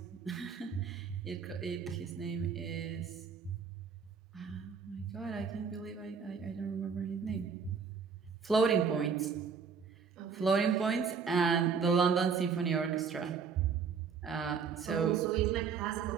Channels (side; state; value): left; quieter; 6.1 dB